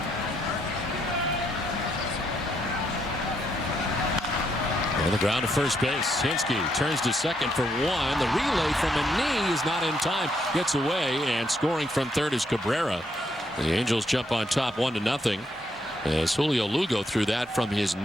On the ground to first base. Hinsky turns to second for 1. The relay from a knee is not in time. Gets away, and scoring from third is Cabrera. The Angels jump on top 1-0 as Julio Lugo threw that from his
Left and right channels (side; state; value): both; normal; correlation 0.76